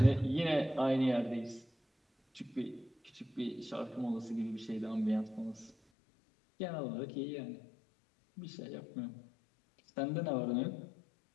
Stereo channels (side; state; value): right; drops out; at 5.8 s